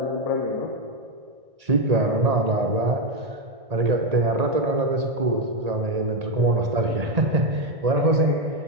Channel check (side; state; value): left; late; 1.8 ms